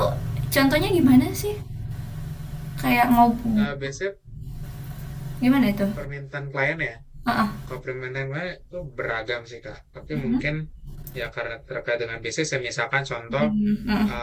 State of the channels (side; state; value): both; identical; correlation 1.00